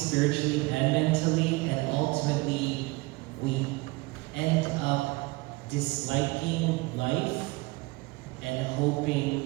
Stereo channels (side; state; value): left; quieter; 23.3 dB